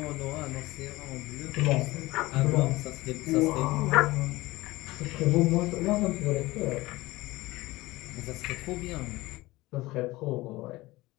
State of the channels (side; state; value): right; quieter; 19.8 dB